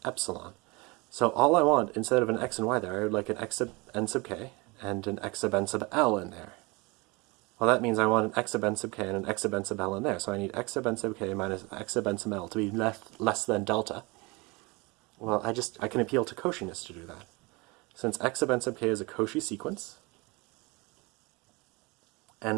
epsilon. So all I want, instead of an x and y there, I would like an x sub n sub k and an x sub n sub l in there. Well, that means I want an x sub n sub k and an x sub n sub l in there. So I need x sub n sub k minus x sub n sub l to be less than delta. Well, I can appeal to Cauchiness to do that. Since x sub n sub k is a Cauchy sequence, and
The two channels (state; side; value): quieter; left; 26.1 dB